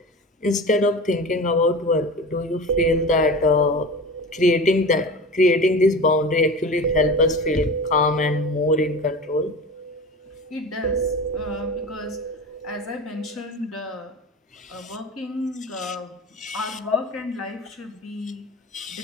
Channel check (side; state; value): both; normal; correlation 0.32